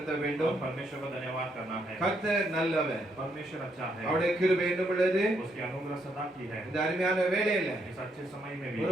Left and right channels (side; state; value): both; normal; correlation 0.75